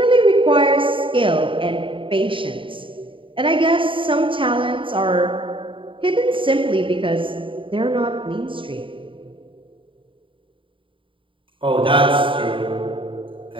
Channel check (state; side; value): late; left; 0.25 ms